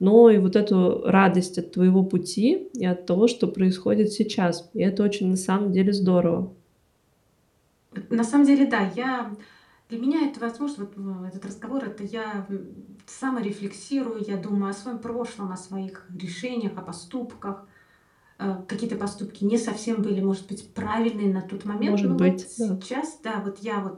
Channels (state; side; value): identical; both; correlation 1.00